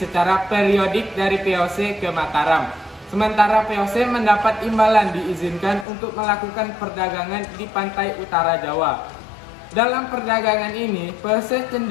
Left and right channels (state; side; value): drops out; right; at 5.9 s